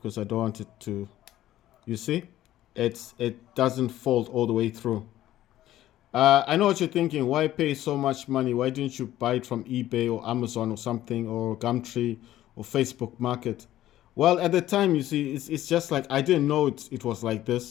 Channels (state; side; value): quieter; right; 13.7 dB